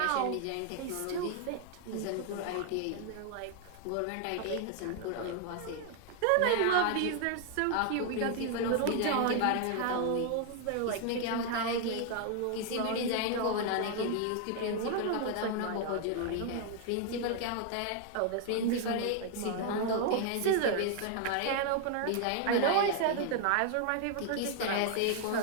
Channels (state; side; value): different; both; correlation 0.00